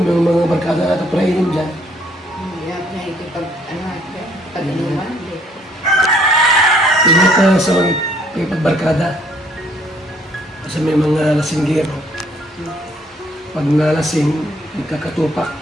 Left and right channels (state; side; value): normal; both; correlation 0.63